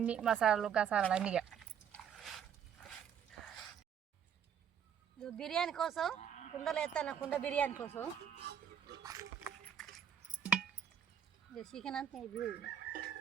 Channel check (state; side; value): quieter; left; 8.4 dB